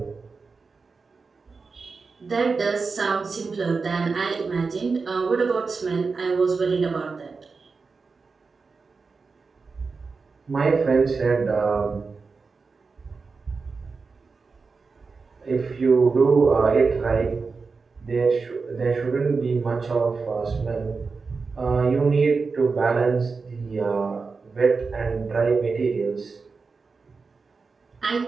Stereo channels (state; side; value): quieter; left; 4.6 dB